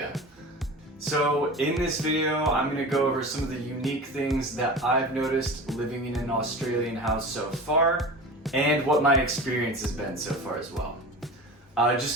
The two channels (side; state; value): both; normal; correlation 0.33